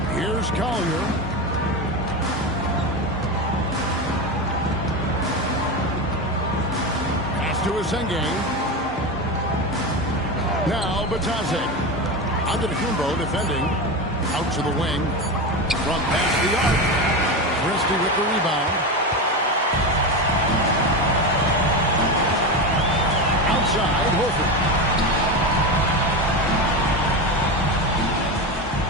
Here's Collier. To Asenge. Now Bataze. Antetokounmpo defending. Out to the wing. From past the arc. Christie with the rebound. Outside, Horford.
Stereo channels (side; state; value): both; normal; correlation 0.19